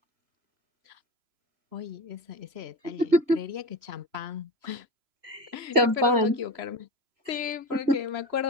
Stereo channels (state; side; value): late; left; 3.0 ms